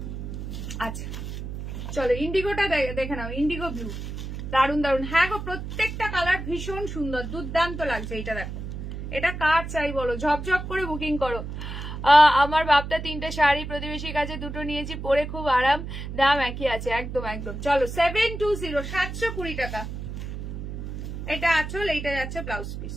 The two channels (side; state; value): right; noise; hum, 7 dB below the sound